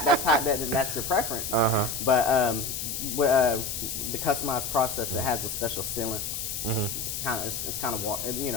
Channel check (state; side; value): noise; left; hiss, 4 dB below the sound